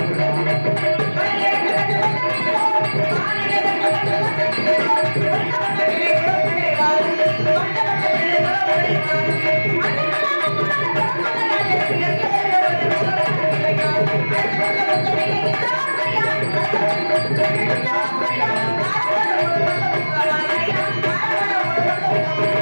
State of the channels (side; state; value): both; inverted; correlation -1.00